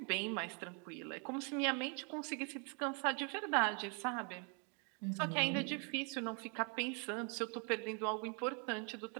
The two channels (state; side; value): quieter; left; 36.9 dB